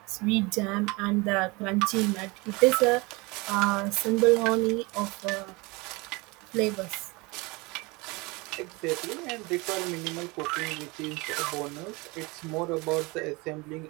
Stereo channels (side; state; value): left; quieter; 25.6 dB